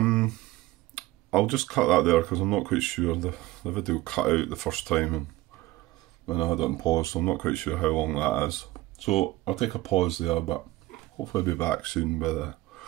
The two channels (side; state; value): left; quieter; 18.2 dB